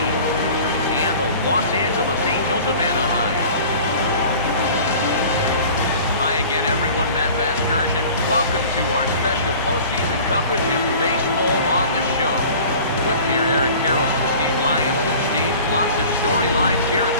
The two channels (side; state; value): both; inverted; correlation -0.44